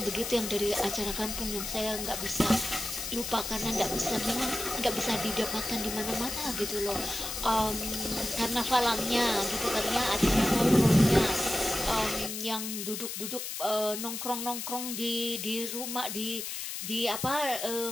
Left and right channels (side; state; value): left; noise; hiss, 5 dB below the sound